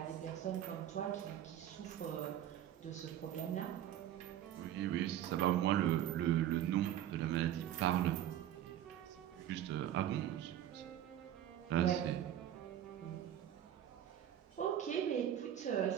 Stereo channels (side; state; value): left; quieter; 11.4 dB